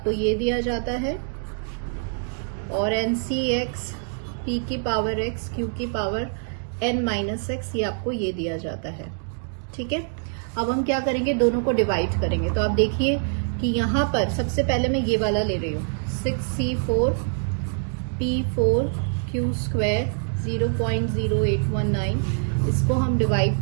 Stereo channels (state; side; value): silent; left; digital silence